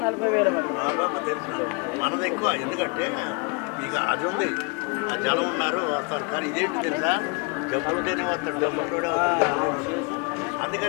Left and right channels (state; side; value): quieter; right; 32.5 dB